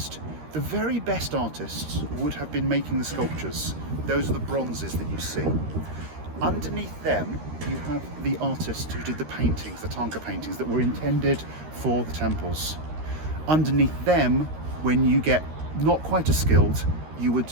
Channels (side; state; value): left; late; 13 ms